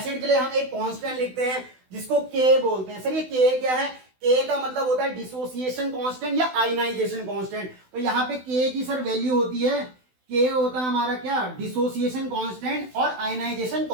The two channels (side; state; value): left; late; 16 ms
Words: के लिए हम एक कांस्टेंट लिखते हैं जिसको K बोलते हैं। सर ये K क्या है, K का मतलब होता है डिसोसिएशन कांस्टेंट या आयनाइजेशन कांस्टेंट। तो यहाँ पे K की सर वैल्यू होती है के होता है हमारा क्या, डिसोसिएशन कांस्टेंट और आयनाइजेशन